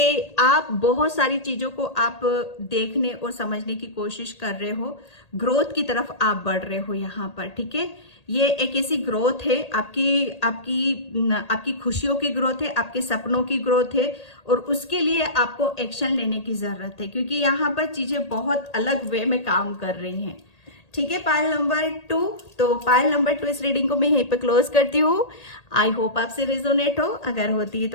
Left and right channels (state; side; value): late; right; 1.8 ms